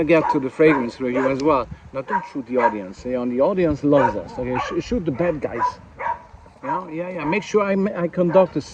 get to the fragrance review as well. Now, don't shoot the audience. The audience loves us. Okay, shoot the bad guys. Yeah. Make sure I conduct a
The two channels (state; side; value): identical; both; correlation 1.00